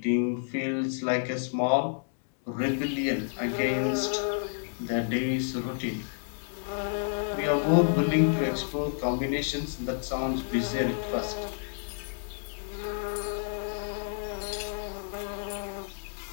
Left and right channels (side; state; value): right; silent; digital silence